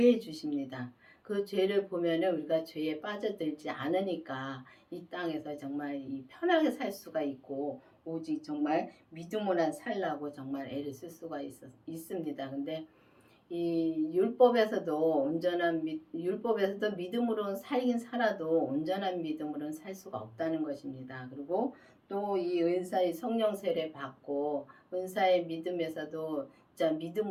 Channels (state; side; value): identical; both; correlation 1.00